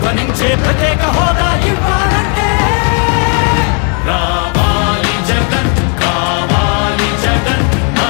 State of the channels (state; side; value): quieter; right; 39.2 dB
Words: ప్రత్యేక హోదా ఇవ్వాలంటే రావాలి జగన్, కావాలి జగన్,